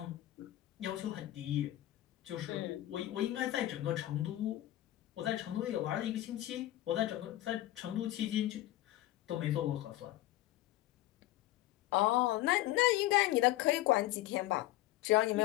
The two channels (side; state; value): right; quieter; 15.4 dB